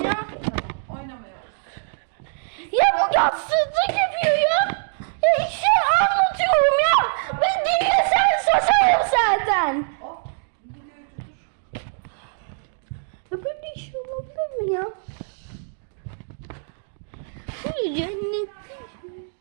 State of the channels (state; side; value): silent; left; 63 dB below the other